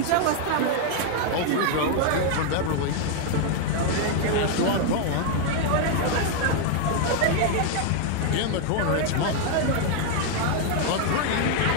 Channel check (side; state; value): both; different; correlation 0.00